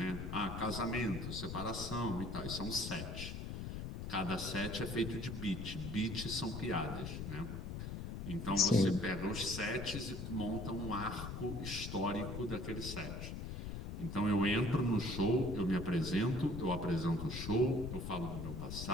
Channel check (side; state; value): left; noise; rumble, 6 dB below the sound